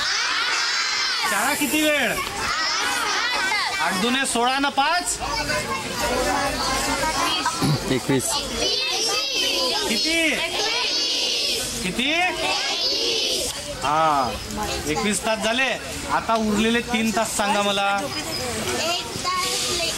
शाळा किती वेळ? 8 दुने 16 न 5 21. किती? किती? हा, 21 तास झाले. आता उरलेले 3 तास सांगा मला.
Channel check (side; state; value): both; identical; correlation 1.00